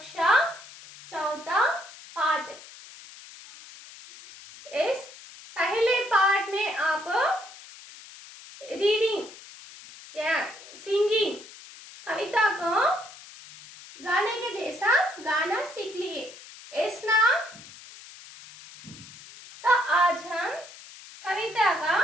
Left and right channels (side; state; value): left; noise; hiss, 18 dB below the sound